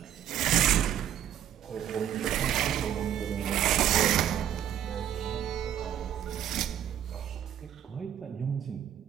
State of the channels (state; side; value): quieter; left; 10.6 dB